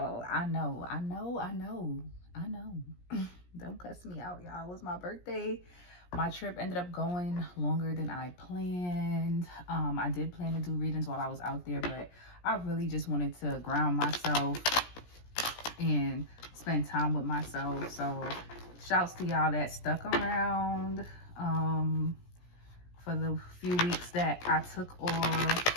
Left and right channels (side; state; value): right; late; 17 ms